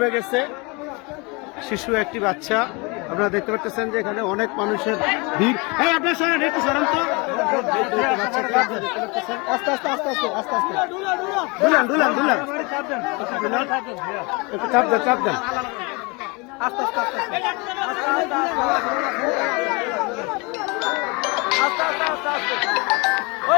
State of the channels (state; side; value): quieter; right; 28.4 dB